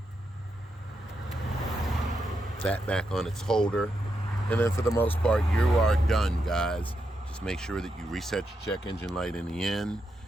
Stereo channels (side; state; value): both; normal; correlation 0.84